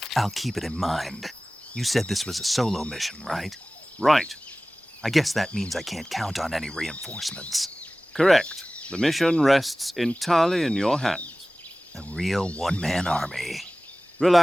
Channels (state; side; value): normal; both; correlation 0.98